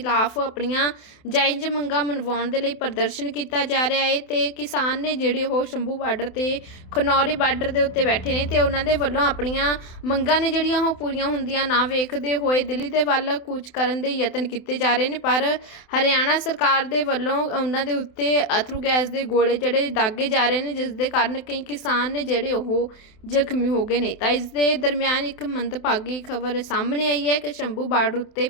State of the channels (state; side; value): late; right; 27 ms